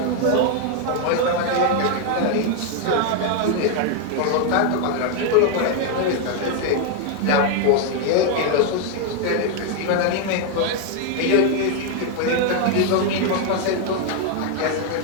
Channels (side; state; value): both; different; correlation 0.01